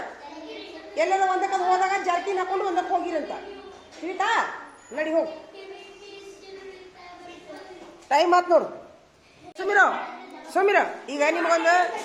ಎಲ್ಲರ ಒಂದಕ್ಕೆ ಹೋದಾಗ ಜಾರ್ಕಿನ್ ಹಾಕೊಂಡು ಒಂದಕ್ಕೆ ಹೋಗಿರಂತ ತಿಳಿತಾ? ನಡಿ ಹೋಗು. ಟೈಮ್ ಆತ್ ನೋಡು. ಸುಮಿರ ಈಗ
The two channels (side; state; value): both; identical; correlation 1.00